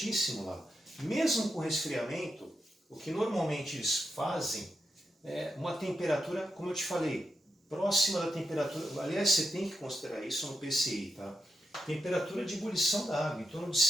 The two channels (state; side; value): normal; both; correlation 0.87